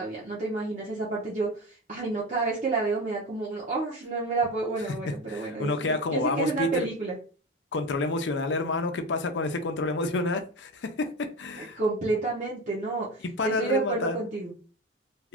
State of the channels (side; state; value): both; normal; correlation 0.24